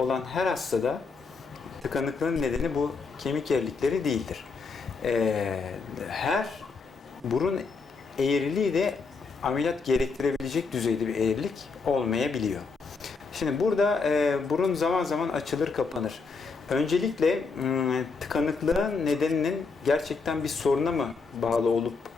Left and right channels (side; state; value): right; quieter; 4.6 dB